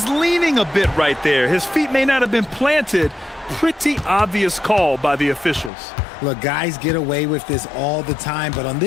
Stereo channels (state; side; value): drops out; right; at 5.7 s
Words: leaning a bit right there. His feet may not have been planted. Pretty obvious call by the officials. Look, guys get away with this all the time, but on